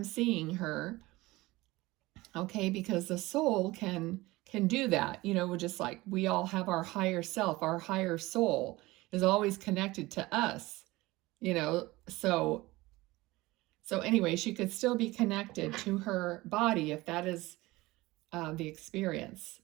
seeing her. Okay, because the soul can do that, just like we all have our higher self, our higher soul is always connected to us, So anyway, she could still be connected to her body if that is the experience.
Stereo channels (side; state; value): left; quieter; 20.0 dB